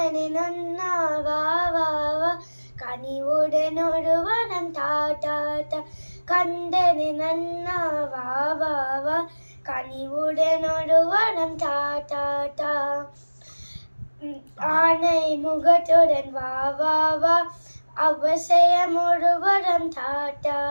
Nanna Baba Va Kanivudan Noruvaram Ta Ta Ta. கந்தனு நன்னா வா வா வா கனிவுடன் ஒருவரம் தா தா தா. ஆனை முகத்துடன் வா வா வா அவசியம் ஒருவரம் தா தா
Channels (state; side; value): inverted; both; correlation -1.00